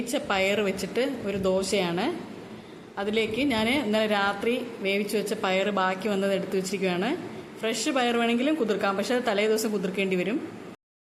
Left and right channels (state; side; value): identical; both; correlation 1.00